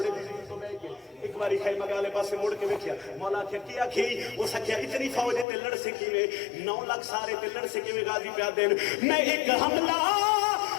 दी तो बैठ के एक बारी खैमा वाले पासे मुड़ के वेख्या मौला आख्या की आखी उस आख्या इतनी फौज है ते लड़ से किवें 9 लाख सारे ते लड़ से किवें गाजी पिया देन मैं एक हमला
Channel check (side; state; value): right; drops out; at 5.5 s